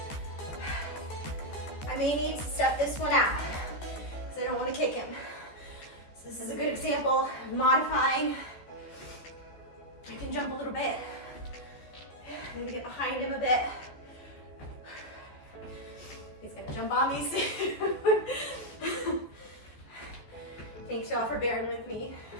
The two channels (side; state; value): right; late; 14 ms